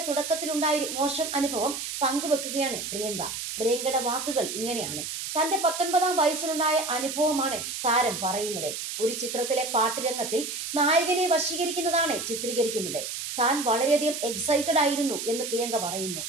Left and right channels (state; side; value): noise; right; hiss, 5 dB below the sound